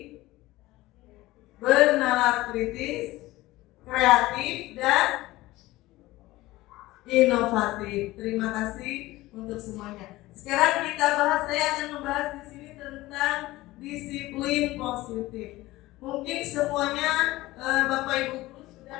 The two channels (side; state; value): right; quieter; 18.3 dB